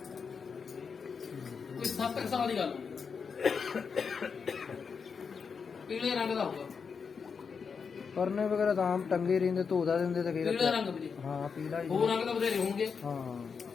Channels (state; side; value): quieter; right; 5.8 dB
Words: ਕੋਈ 7 ਸਾਲ ਦੀ ਗੱਲ ਹੋਊਗੀ, ਪੀਲੇ ਰੰਗ ਦਾ ਹੋਊਗਾ। ਪਰਨੇ ਵਗੈਰਾ ਤਾਂ ਆਮ ਟੰਗੇ ਰਹਿੰਦੇ, ਧੋਦਾ ਦਿੰਦੇ ਤੇ ਪੀਲਾ ਫਿਰ ਰੰਗ ਵੀਰੇ, ਹਾਂ ਪੀਲਾ ਹੀ ਹੋਰ ਰੰਗ ਤਾਂ ਬਥੇਰੇ ਹੋਣਗੇ।